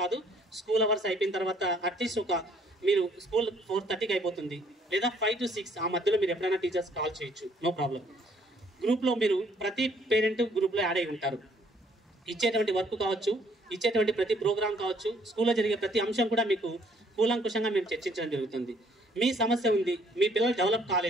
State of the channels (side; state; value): both; normal; correlation 0.63